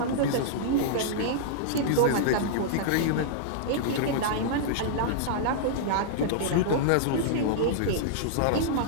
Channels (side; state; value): both; different; correlation -0.02